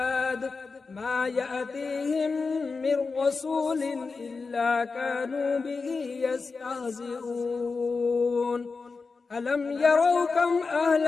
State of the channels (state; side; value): quieter; right; 4.4 dB